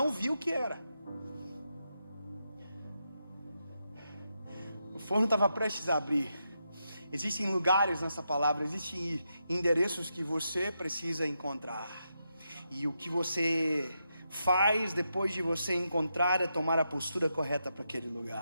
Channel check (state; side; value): inverted; both; correlation -0.84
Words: vi o que era. O forno estava prestes a abrir. Existem lugares nessa palavra, existem endereços que você precisa encontrar. E o que você faz depois de você encontrar é tomar a postura correta para aquele